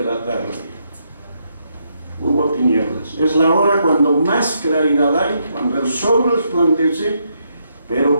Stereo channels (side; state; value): both; inverted; correlation -0.78